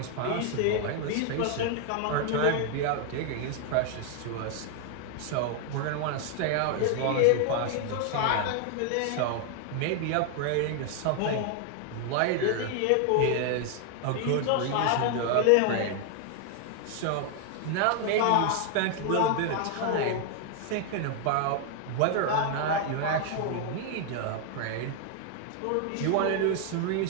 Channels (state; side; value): different; both; correlation 0.00